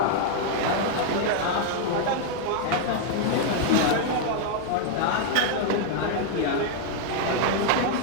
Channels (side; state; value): both; different; correlation 0.00